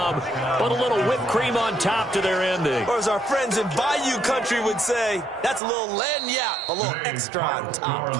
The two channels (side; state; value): left; drops out; at 5.6 s